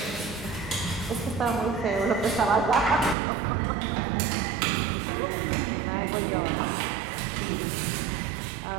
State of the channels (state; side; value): drops out; left; at 3.2 s